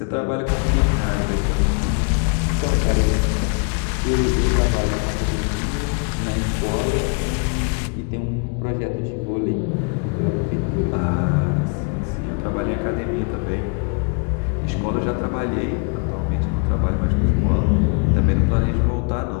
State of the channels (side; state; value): right; quieter; 38.5 dB